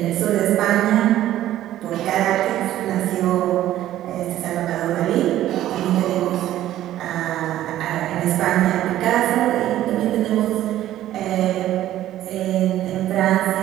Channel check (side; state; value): left; quieter; 13.3 dB